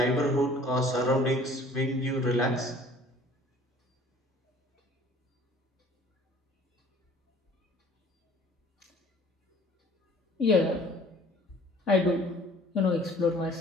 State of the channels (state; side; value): normal; both; correlation 0.51